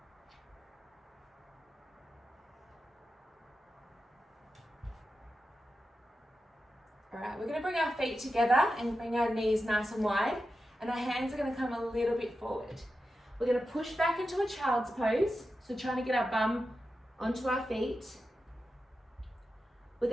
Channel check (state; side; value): normal; both; correlation 0.91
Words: All right, we're going to bring our feet together and bring our knees nice and wide, and our hands are going to come a little bit forward. We're going to push back into a child's pose, so trying to get our bum onto our feet. We're